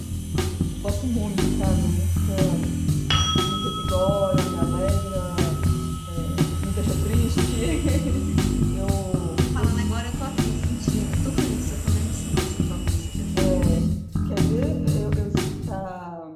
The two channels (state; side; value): identical; both; correlation 1.00